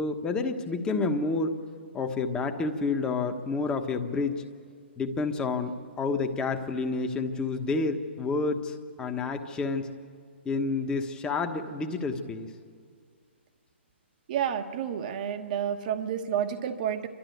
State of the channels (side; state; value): both; normal; correlation 0.15